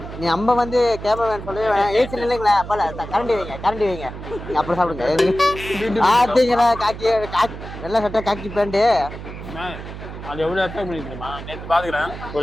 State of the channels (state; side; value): noise; right; hum, 11 dB below the sound